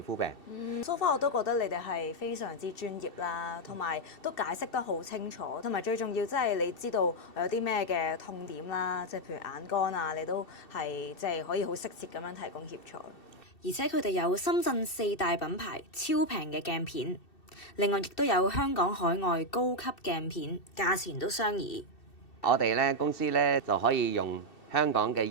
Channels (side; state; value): right; late; 2.7 ms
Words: 膚病。So far 我都覺得你哋係非常之專業啦，同埋都解釋得好清楚，同埋最重要即係你知道有啲咩嘅痛點啦，即係譬如眼乾啊，你都係即係可以好適切咁樣提供協助。而且佢哋有深圳4大品牌超平嘅鏡片，另外亦都有香港海外高級鏡片，價錢都相宜。我哋咧公司咧就可以用香港嘅